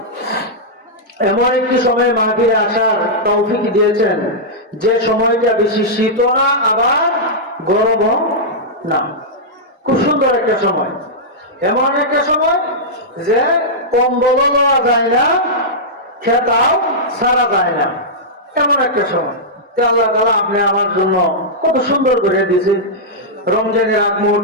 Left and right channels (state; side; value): normal; both; correlation -0.10